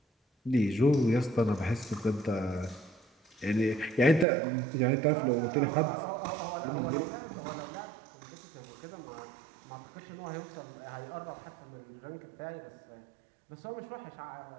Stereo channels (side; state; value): left; drops out; at 4.2 s